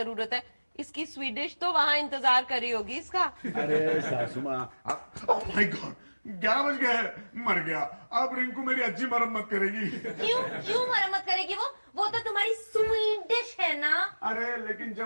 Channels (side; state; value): both; inverted; correlation -1.00